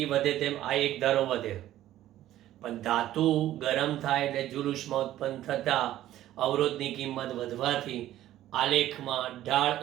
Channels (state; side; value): quieter; left; 13.5 dB